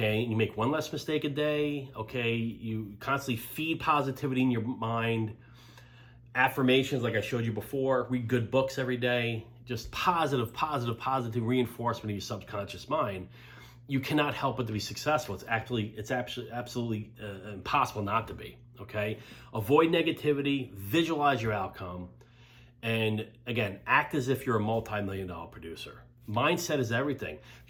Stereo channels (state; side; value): identical; both; correlation 1.00